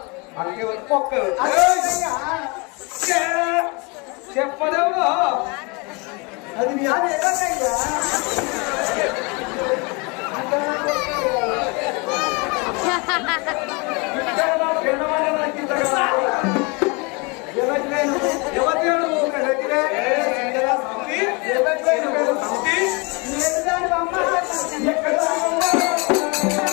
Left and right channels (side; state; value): right; quieter; 29.7 dB